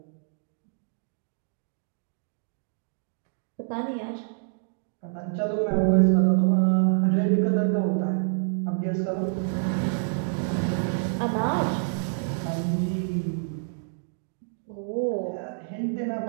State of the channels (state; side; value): silent; left; digital silence